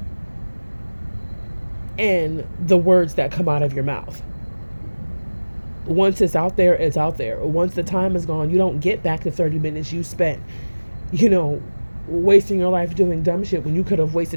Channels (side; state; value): both; inverted; correlation -1.00